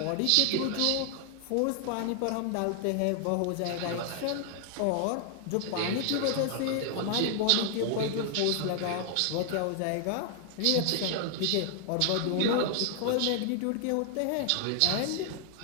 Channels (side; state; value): both; different; correlation 0.00